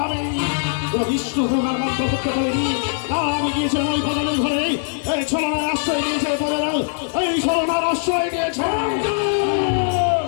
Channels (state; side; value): silent; right; digital silence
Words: আমি কোনো বিষ্ণু প্রকার মন্ত্র করতে বলিনি। না, আমি গিয়েছিলাম ওই প্রজাদের ঘরে, এই ছলনার আশ্রয় দিয়েছে প্রজারা, এই ছলনার আশ্রয় দিয়েছে।